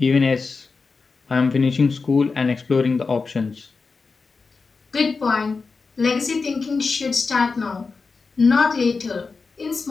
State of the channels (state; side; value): quieter; right; 4.5 dB